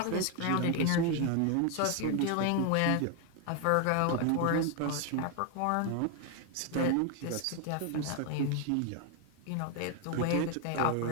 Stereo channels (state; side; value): different; both; correlation 0.01